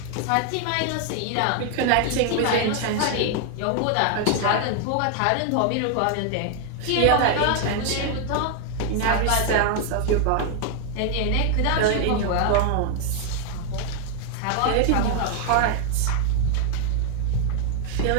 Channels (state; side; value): different; both; correlation 0.00